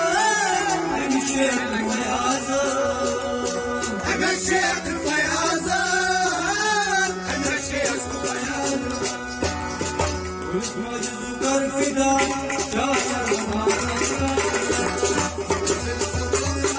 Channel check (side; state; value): both; identical; correlation 1.00